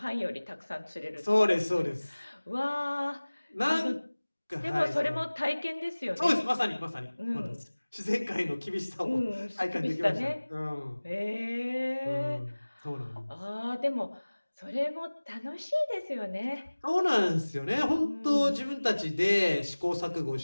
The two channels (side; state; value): both; inverted; correlation -1.00